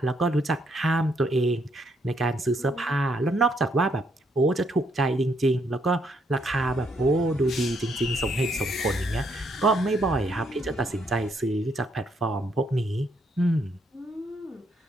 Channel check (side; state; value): both; normal; correlation 0.73